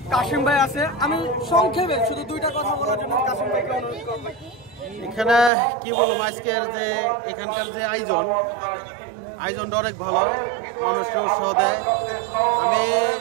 কাশিম ভাই আছে। আমি সংক্ষেপে শুধু 2টা কথা বলার জন্য কাশিম ভাইকে অনুরোধ করব। এখানে কি বলবো, আজকের যে এখানকার যে আয়োজনটা অনেক ভালো, মানুষকে উৎসাহ দেয়। আমি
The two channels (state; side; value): drops out; left; at 5.5 s